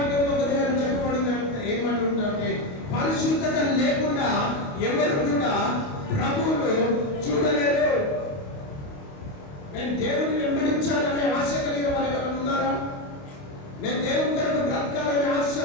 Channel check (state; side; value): late; right; 28 ms